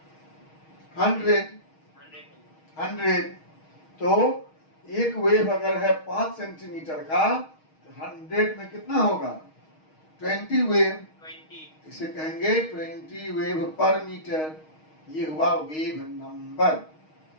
100। तो एक वेव अगर है 5 सेंटीमीटर का, 100 में कितना होगा? 20 वेव। इसे कहेंगे 20 वेव पर मीटर। ये हुआ wave number.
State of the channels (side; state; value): right; late; 6.4 ms